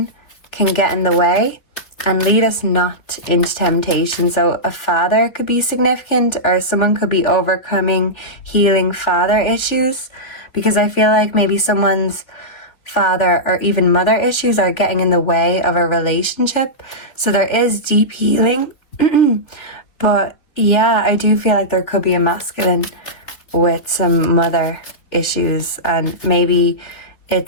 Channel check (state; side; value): late; right; 3.4 ms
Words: can get in the way and lead us not into temptation. So a father could be significant, or someone could be overcoming, healing father issues, because I feel like maybe someone's father or even mother issues are getting in the way of a relationship. So there is deep healing. But yeah, I do feel like there could be a masculine with some mother issues, and maybe